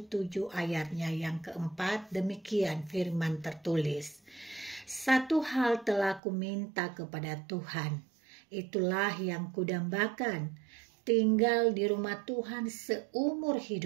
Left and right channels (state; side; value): drops out; left; at 6.2 s